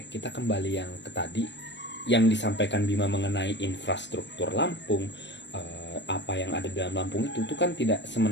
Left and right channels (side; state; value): right; late; 0.52 ms